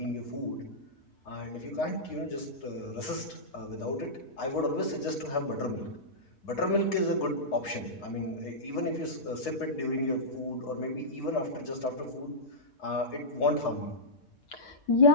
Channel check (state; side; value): late; right; 7.3 ms